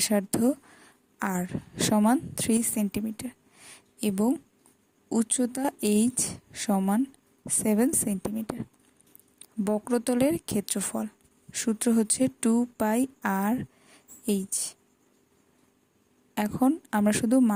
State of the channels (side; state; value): both; identical; correlation 1.00